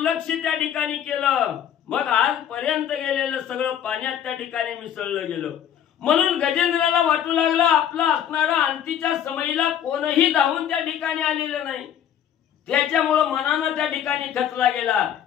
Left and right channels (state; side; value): quieter; right; 9.7 dB